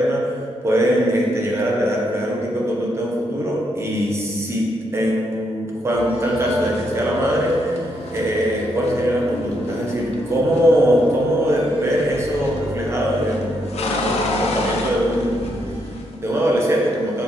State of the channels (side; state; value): both; normal; correlation 0.77